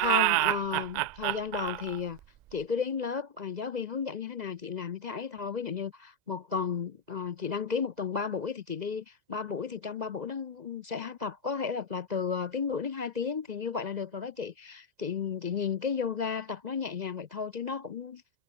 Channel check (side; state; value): left; late; 2.0 ms